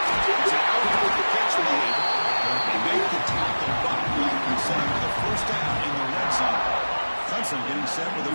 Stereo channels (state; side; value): inverted; both; correlation -1.00